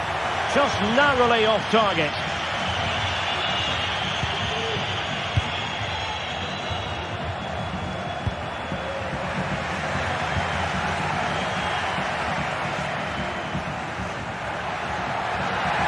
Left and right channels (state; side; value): identical; both; correlation 1.00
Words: Just narrowly off target.